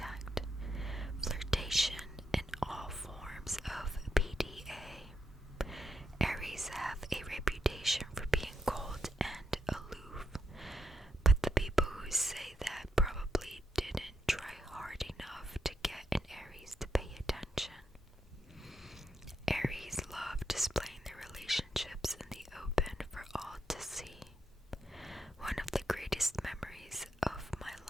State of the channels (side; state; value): both; normal; correlation 0.82